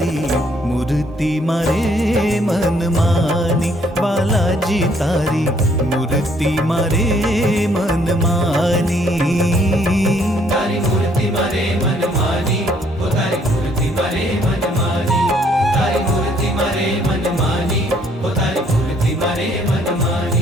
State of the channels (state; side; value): normal; both; correlation 0.65